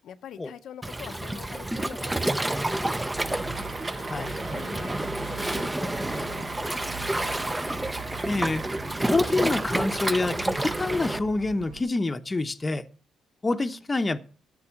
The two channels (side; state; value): both; normal; correlation 0.94